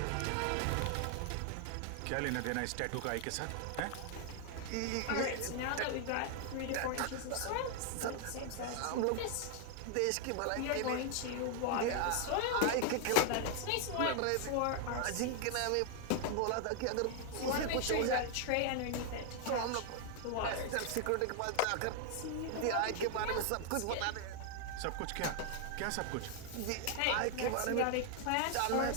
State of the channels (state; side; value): different; both; correlation 0.00